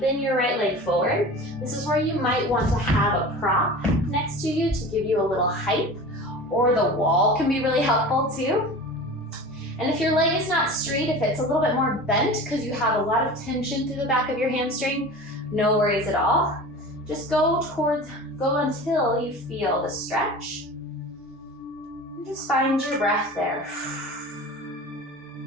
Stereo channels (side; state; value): both; normal; correlation 0.35